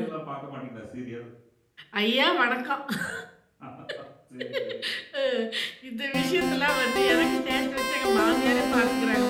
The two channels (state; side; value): identical; both; correlation 1.00